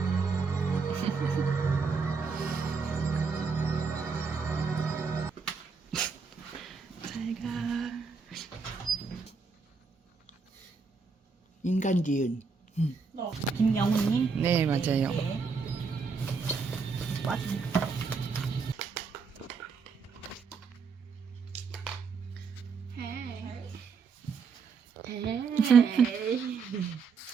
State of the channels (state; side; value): quieter; left; 5.1 dB